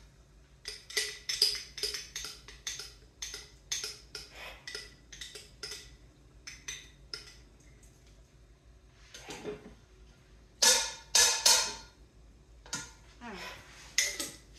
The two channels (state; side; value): identical; both; correlation 1.00